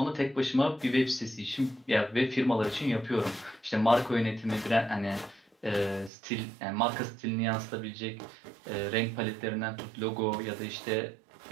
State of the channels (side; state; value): left; drops out; at 6.1 s